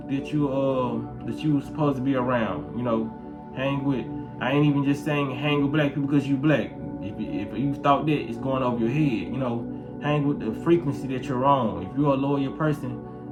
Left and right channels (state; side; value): identical; both; correlation 1.00